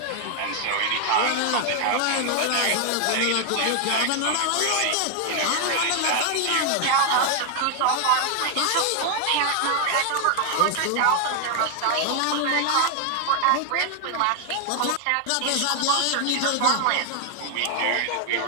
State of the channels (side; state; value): both; different; correlation 0.00